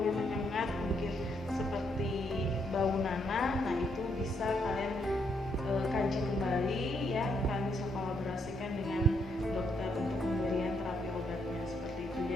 menyengat, mungkin seperti bau nanah, nah itu bisa kalian kaji kembali ya. Kalian bisa kolaborasikan dengan dokter untuk pemberian terapi obatnya seperti itu.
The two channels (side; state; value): both; normal; correlation 0.75